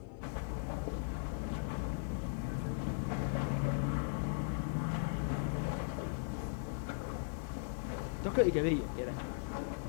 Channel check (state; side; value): silent; right; digital silence